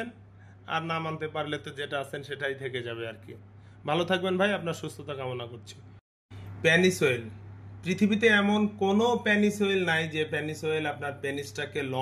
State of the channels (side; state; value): both; identical; correlation 1.00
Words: আর না মানতে পারলে তো যেটা আছেন সেটাই থেকে যাবে আর কি। ভালো থাকবেন ভাই, আপনার সুস্থতা কামনা করছি। Penis oil. পৃথিবীতে এমন কোনো পেনিস অয়েল নাই যে পেনিস অয়েল আপনার পেনিসটাকে